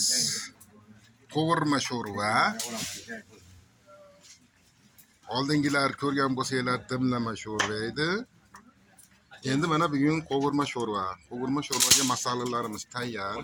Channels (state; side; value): identical; both; correlation 1.00